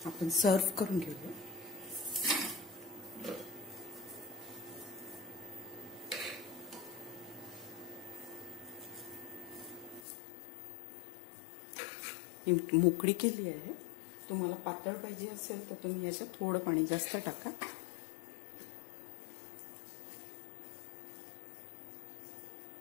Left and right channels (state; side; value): drops out; right; at 10.0 s